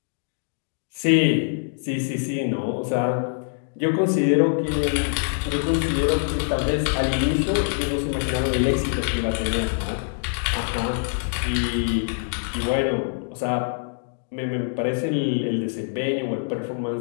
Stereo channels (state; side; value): silent; right; digital silence